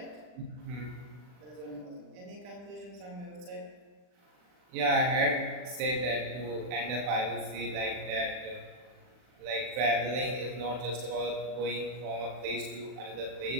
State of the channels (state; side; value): late; left; 40 ms